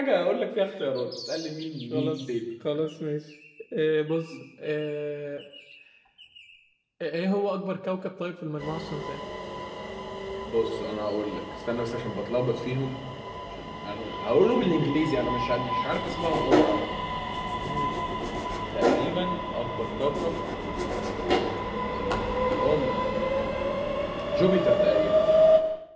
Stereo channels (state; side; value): identical; both; correlation 1.00